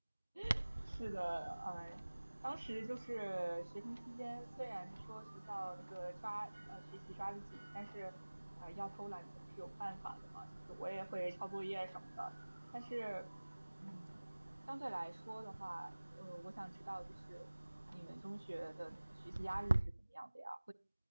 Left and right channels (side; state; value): both; inverted; correlation -1.00